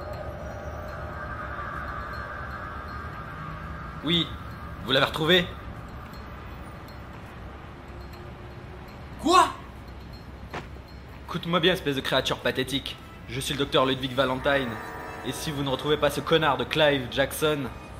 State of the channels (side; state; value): both; identical; correlation 1.00